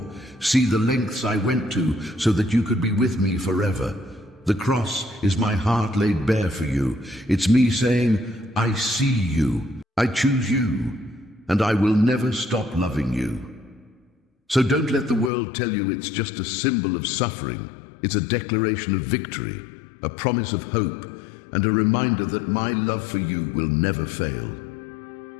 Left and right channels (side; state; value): right; drops out; at 15.3 s